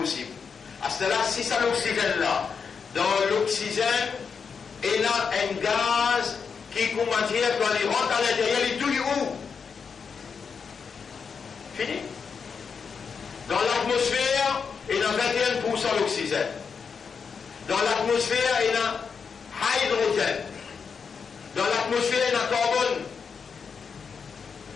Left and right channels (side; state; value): right; quieter; 5.9 dB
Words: À ce là, si ça l'oxygène là, dans l'oxygène, il y a un gaz qui, comment dire, quand il rentre à l'intérieur, il touille où? Fini. l'atmosphère, il y a 21% d'oxygène. Dans l'atmosphère, il y a hydrogène. Dans l'atmosphère, il y a carbone.